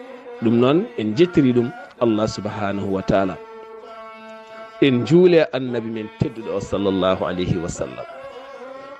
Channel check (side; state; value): both; identical; correlation 1.00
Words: ɗum noon en jettiri ɗum Allah subhanahu wa taala en juule annabi men tedduɗo o sallllahu alayhi wa sallam